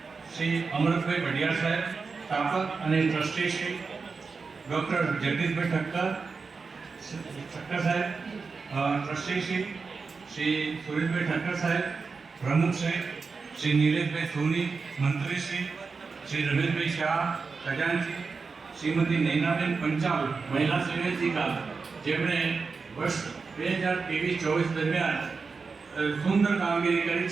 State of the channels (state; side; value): quieter; left; 4.7 dB